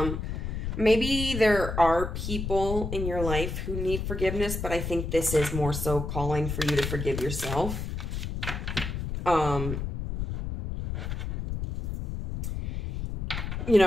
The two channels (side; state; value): left; noise; rumble, 4 dB below the sound